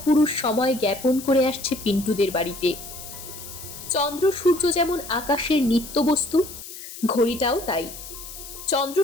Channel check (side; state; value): left; noise; hiss, 13 dB below the sound